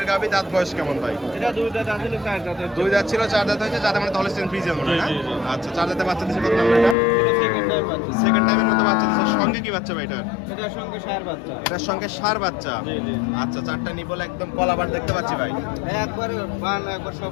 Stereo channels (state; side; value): drops out; right; at 7.0 s